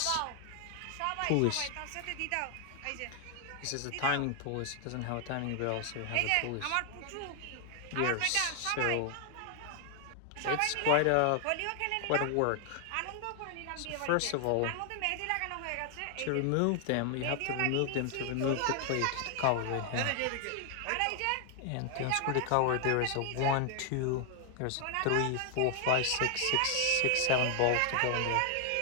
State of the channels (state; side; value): different; both; correlation 0.00